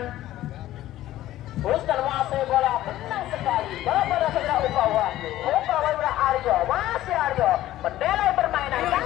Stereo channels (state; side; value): quieter; right; 14.4 dB